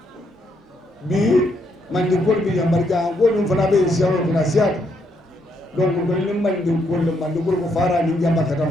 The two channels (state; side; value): normal; both; correlation 0.75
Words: bi mandi kuwal bi yambar ja godun fana be siyaro kuna siyat donc don ni mandi kuwal ko fara ni jamba